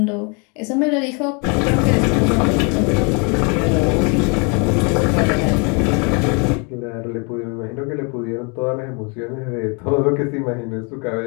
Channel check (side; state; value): right; quieter; 34.0 dB